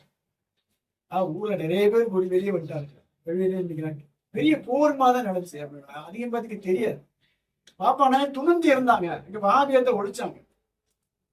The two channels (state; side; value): identical; both; correlation 1.00